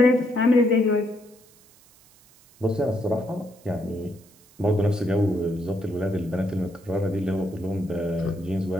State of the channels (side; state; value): right; noise; hiss, 28 dB below the sound